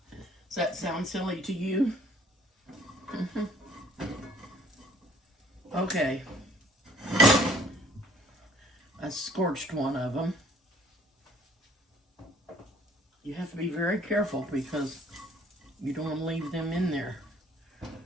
Does that sound silly to you? Okay. I scorched one of them. You have to be very careful because you don't want to leave them in there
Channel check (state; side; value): normal; both; correlation 0.58